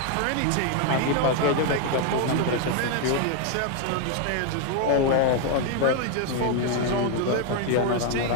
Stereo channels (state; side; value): different; both; correlation 0.01